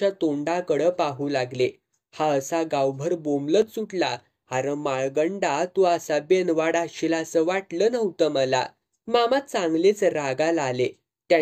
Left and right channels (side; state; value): both; identical; correlation 1.00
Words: तोंडाकडं पाहू लागले. हा असा गावभर बोंबलत सुटला, अरे माळगंडा, तू असा बेनवाड असशील असं वाटलं नव्हतं मला. मामा चांगलेच रागाला आले.